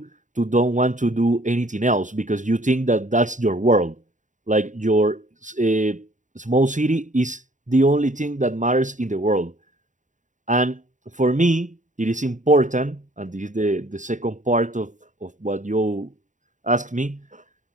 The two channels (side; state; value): left; late; 0.36 ms